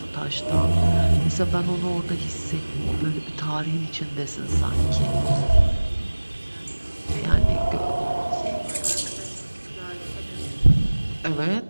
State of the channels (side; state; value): both; inverted; correlation -1.00